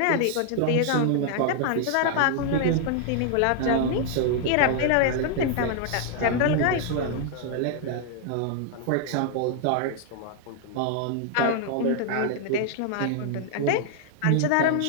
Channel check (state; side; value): different; both; correlation 0.00